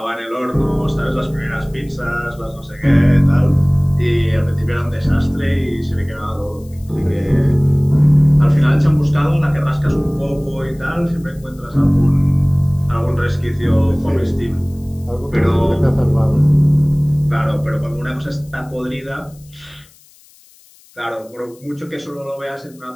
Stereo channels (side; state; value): left; noise; hiss, 28 dB below the sound